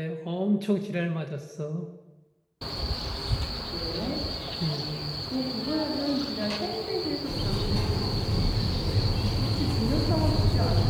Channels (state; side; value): identical; both; correlation 1.00